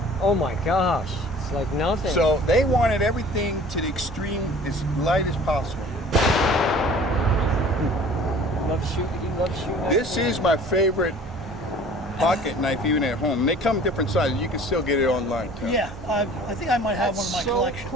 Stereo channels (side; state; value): both; normal; correlation 0.47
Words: Oh my gosh, it's like nothing. So they wanted everything to the extreme, as light as possible. He loves shooting. This is my favorite pocket knife even at home. They come different sizes. You can still get it online too. Yeah, I think I might have one in my so collection.